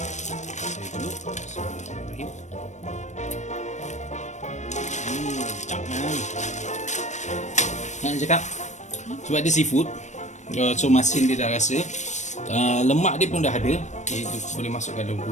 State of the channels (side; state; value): right; late; 0.34 ms